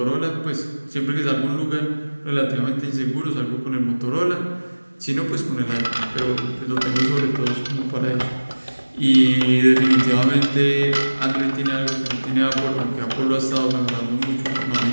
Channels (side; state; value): both; inverted; correlation -1.00